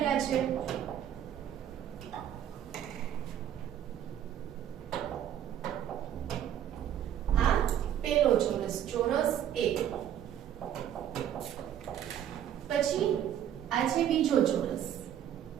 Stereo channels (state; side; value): quieter; left; 10.3 dB